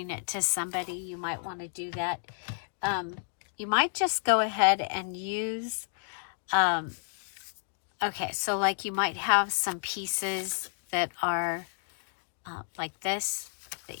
it to somebody, you might want to do that. You might just go ahead and use, okay, so like you might have some pieces that are like this,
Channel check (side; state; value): right; silent; digital silence